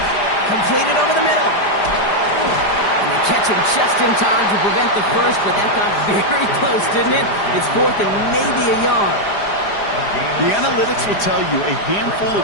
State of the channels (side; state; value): right; late; 4.9 ms